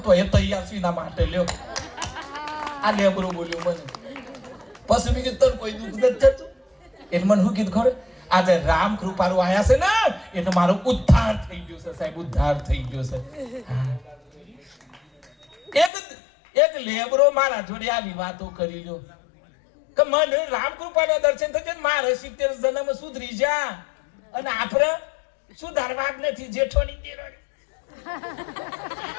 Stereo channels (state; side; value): drops out; right; at 15.9 s